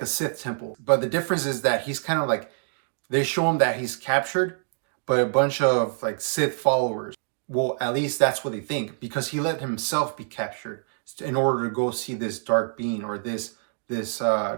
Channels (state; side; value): silent; left; digital silence